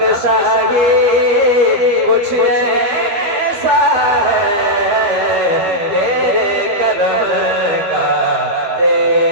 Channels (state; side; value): late; left; 13 ms